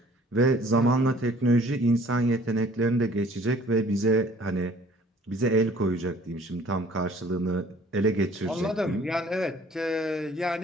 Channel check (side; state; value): both; normal; correlation 0.55